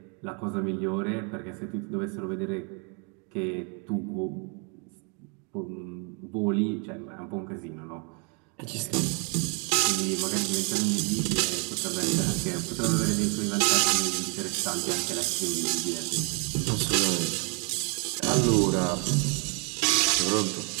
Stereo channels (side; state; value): left; quieter; 36.3 dB